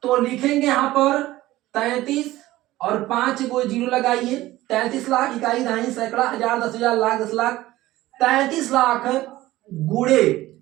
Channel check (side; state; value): left; quieter; 16.6 dB